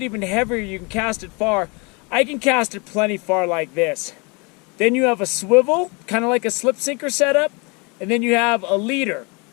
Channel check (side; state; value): right; quieter; 30.1 dB